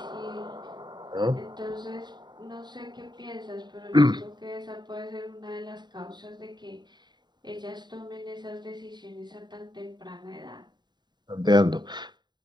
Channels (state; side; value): late; left; 0.21 ms